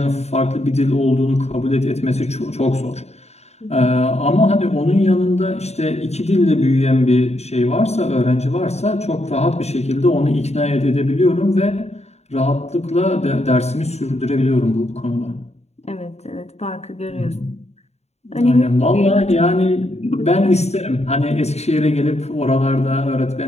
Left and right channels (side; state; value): right; late; 0.31 ms